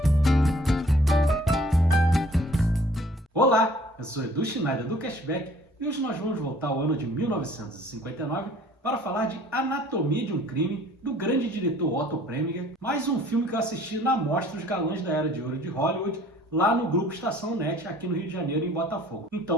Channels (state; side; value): normal; both; correlation 0.55